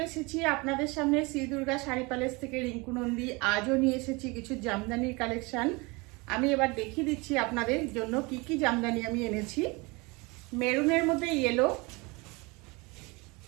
এসেছি আপনাদের সামনে শ্রী দুর্গা শাড়ি প্যালেস থেকে রিঙ্কু নন্দী। আজও নিয়ে এসেছি কিছু জামদানির কালেকশন। আমি এবার দেখিয়ে দিচ্ছি আপনাদের জন্য কি কি জামদানি আমি এনেছি। মেরুনের মধ্যে ইয়েলো,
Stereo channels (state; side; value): quieter; left; 26.4 dB